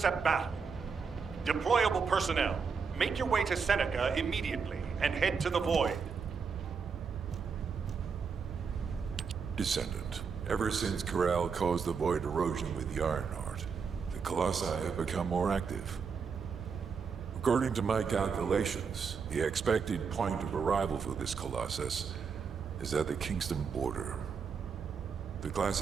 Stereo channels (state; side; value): quieter; left; 5.8 dB